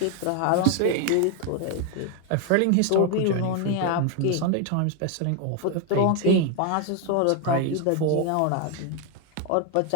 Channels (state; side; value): different; both; correlation 0.01